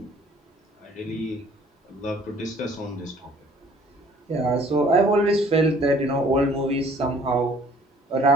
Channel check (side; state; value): both; normal; correlation 0.55